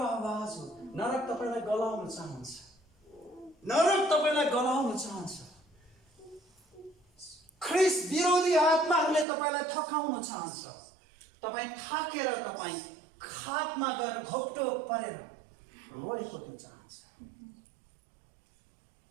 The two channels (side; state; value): left; drops out; at 9.2 s